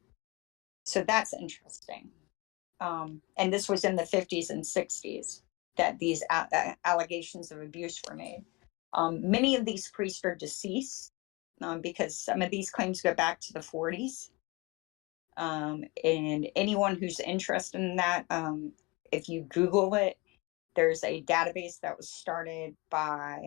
So that's interesting. And this was in the 50s and 60s that these allegations of abuse were made. Many of these priests are deceased because some of these claims go back to the 40s. And anyone who's interested in that, if you Google it, there's a database that was started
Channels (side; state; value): right; quieter; 25.2 dB